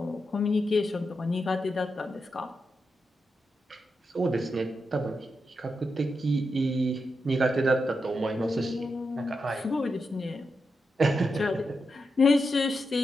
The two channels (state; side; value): normal; both; correlation 0.86